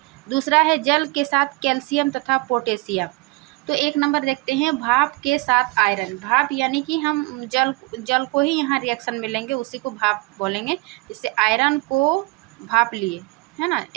दूसरा है जल के साथ कैल्शियम तथा पोटेशियम। तो 1 नंबर देखते हैं, भाप के साथ आयरन। भाप यानी कि हम जल को ही यहाँ रिएक्शन में लेंगे, उसी को भाप बोलेंगे। जैसे आयरन को भाप लिए है ना,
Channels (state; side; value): quieter; left; 25.0 dB